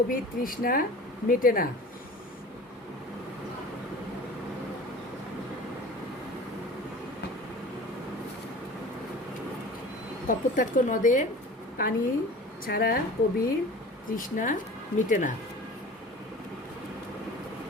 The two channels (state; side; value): normal; both; correlation 0.40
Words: তৃষ্ণা মেটে না? কপোতাক্ষ নদের পানি ছাড়া কবির তৃষ্ণা মিটে না।